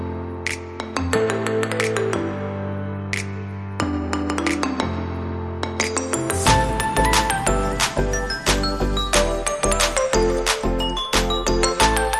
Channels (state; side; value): identical; both; correlation 1.00